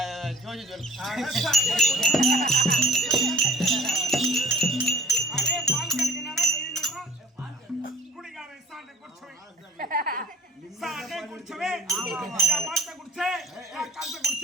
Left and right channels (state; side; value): normal; both; correlation 0.50